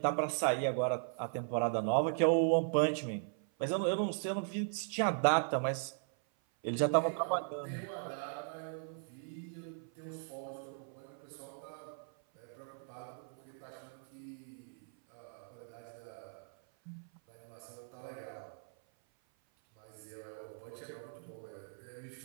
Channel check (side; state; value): left; silent; 52 dB below the other